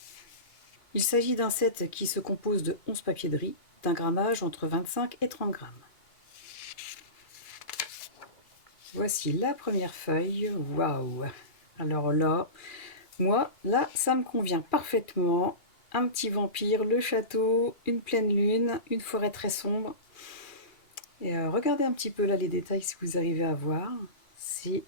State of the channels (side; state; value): right; late; 2.2 ms